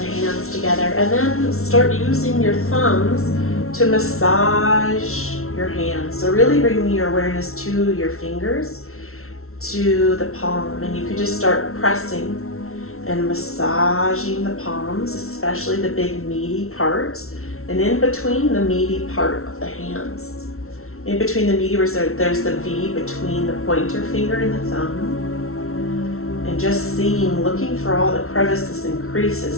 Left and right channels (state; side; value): late; right; 0.63 ms